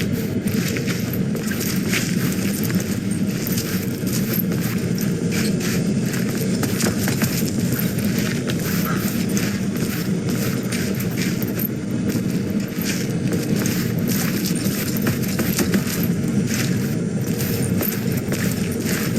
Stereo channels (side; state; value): both; identical; correlation 1.00